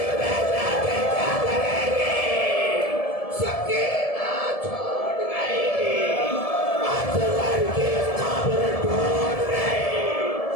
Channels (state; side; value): late; right; 1.7 ms